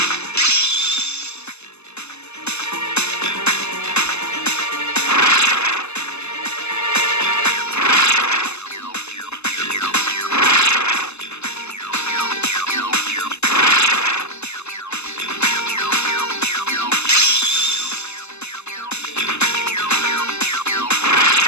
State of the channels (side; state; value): right; late; 0.81 ms